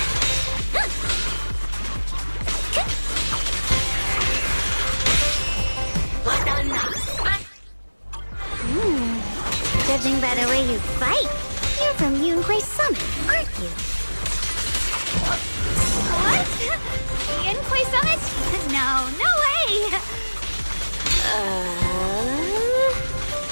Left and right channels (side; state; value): both; inverted; correlation -1.00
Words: Judging by the way you fight, you're from Yunquay Summit, aren't you? What? Yunquay Summit? No, no way!